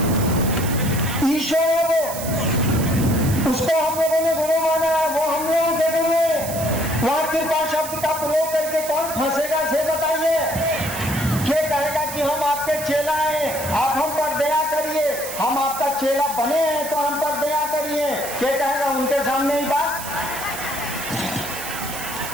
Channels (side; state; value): right; noise; hiss, 9 dB below the sound